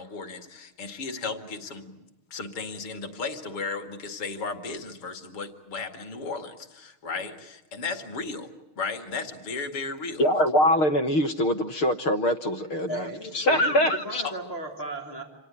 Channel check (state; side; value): late; right; 6.5 ms